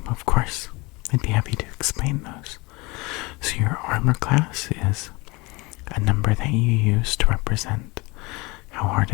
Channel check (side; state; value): right; quieter; 24.9 dB